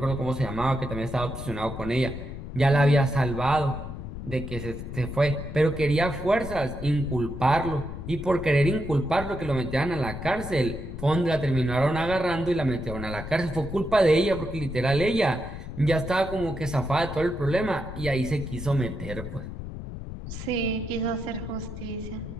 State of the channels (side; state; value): left; noise; rumble, 9 dB below the sound